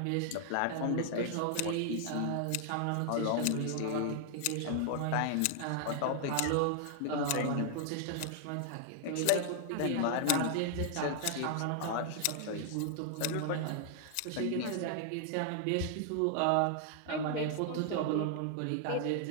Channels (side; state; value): both; different; correlation -0.01